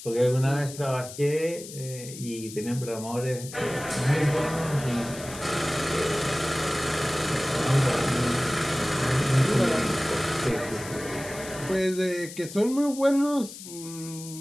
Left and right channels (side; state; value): left; noise; hiss, 13 dB below the sound